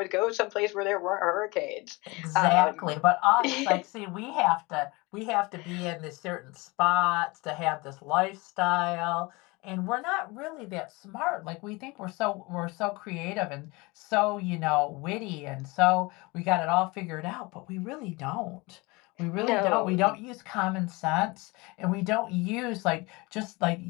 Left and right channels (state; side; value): quieter; right; 24.7 dB